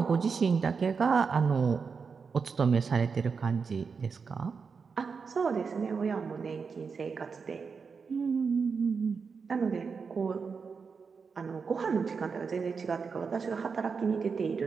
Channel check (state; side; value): quieter; left; 5.4 dB